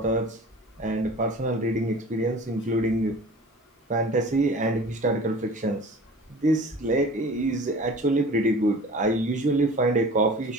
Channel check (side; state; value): both; normal; correlation 0.42